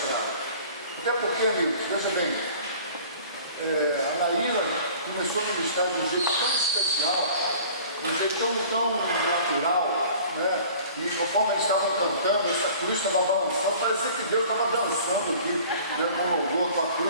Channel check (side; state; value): both; inverted; correlation -0.47